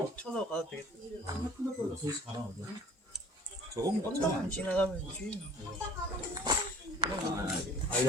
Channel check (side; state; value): both; normal; correlation 0.49